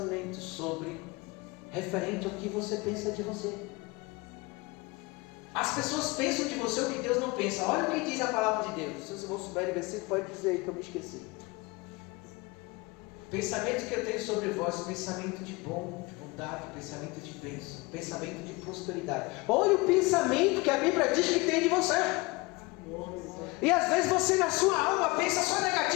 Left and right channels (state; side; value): quieter; right; 24.4 dB